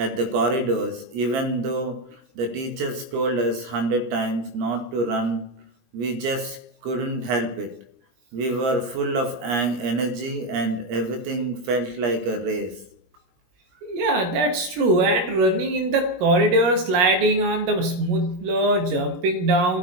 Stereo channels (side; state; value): left; late; 17 ms